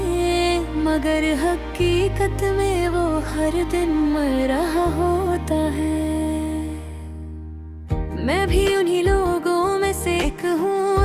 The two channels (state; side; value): identical; both; correlation 1.00